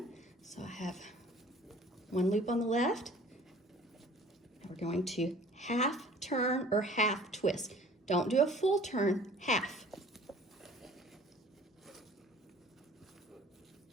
So I have one loop on the left. We're going to half turn or half twist. Don't do a full turn, half.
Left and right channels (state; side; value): normal; both; correlation 0.49